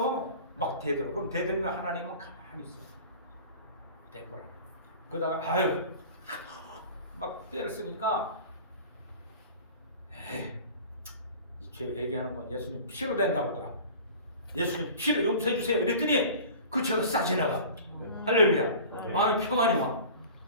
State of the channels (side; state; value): both; inverted; correlation -0.41